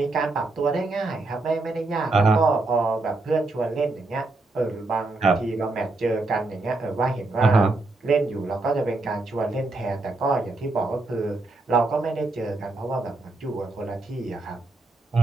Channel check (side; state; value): left; quieter; 3.2 dB